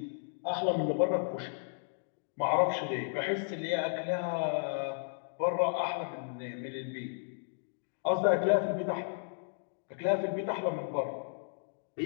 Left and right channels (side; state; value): right; silent; digital silence